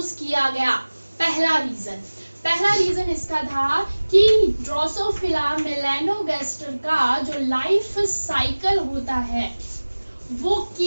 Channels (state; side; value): inverted; both; correlation -1.00